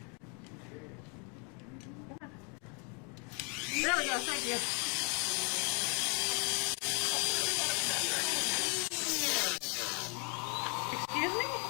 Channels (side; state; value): right; quieter; 35.4 dB